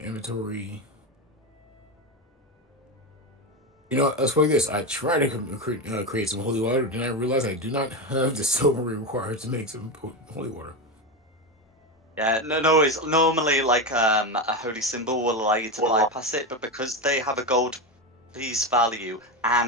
inventory. Let's play this. I try to create some holy water, then I realize I do not have the silver required to make some holy water. Yeah, no worries. Normally, like a holy symbol will allow you to bypass it, but because they have a gold piece value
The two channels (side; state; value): both; normal; correlation 0.15